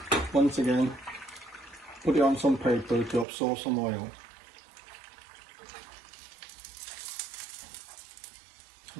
Once again, put it on some paper to absorb some oil.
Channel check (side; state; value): left; drops out; at 3.2 s